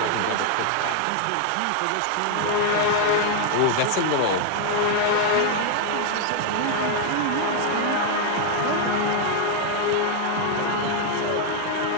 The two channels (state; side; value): different; both; correlation 0.00